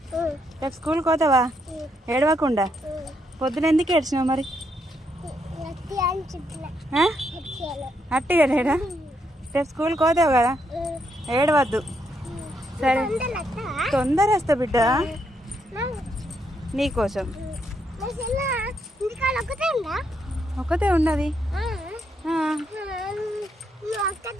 రేపు స్కూల్కి పోతావా? ఏడవకుండా. పొద్దున ఎందుకు ఏడ్చినావు మరి? అట్టిగా లేడా? రేపు స్కూల్కి పోతావు కదా, ఏడవద్దు సరే? తొందర వస్తా బిడ్డ నీకోసం. ఒక్కతే ఉన్నది.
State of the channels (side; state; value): both; normal; correlation 0.77